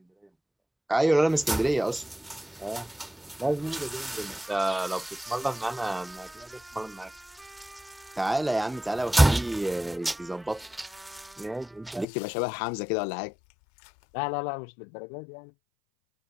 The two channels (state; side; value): drops out; right; at 12.1 s